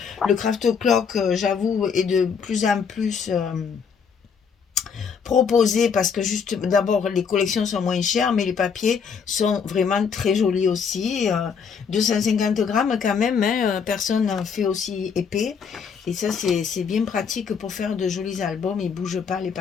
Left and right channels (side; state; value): right; quieter; 6.3 dB